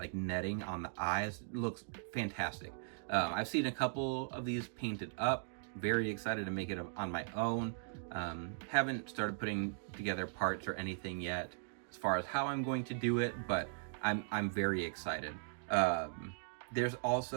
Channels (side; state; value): left; silent; digital silence